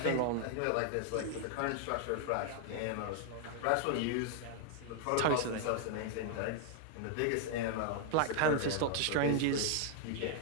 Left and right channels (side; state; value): both; different; correlation 0.00